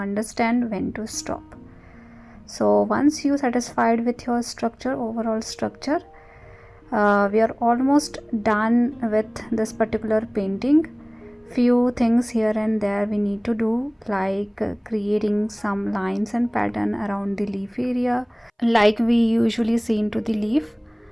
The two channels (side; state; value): both; identical; correlation 1.00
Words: when to stop. So once you satisfied with your structure, overall structure, we are almost done with this particular painting. Few things here and there we need to do, like creating some lines and pattern around the leaf area like we usually see into the leaf.